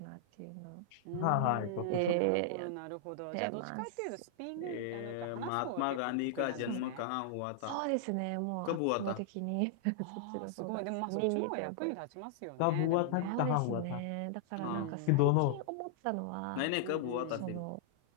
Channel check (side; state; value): both; different; correlation -0.01